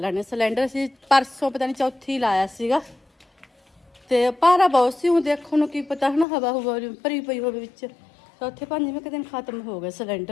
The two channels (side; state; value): right; drops out; at 6.2 s